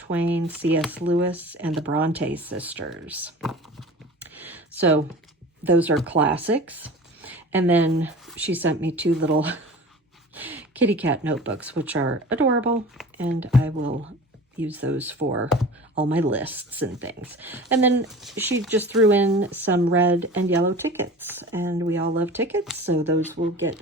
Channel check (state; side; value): normal; both; correlation 0.38